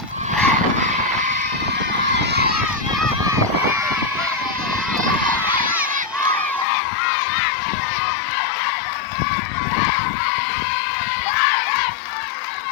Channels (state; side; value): drops out; right; at 6.7 s